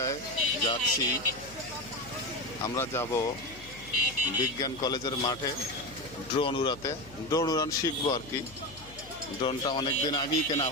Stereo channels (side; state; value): left; noise; hum, 20 dB below the sound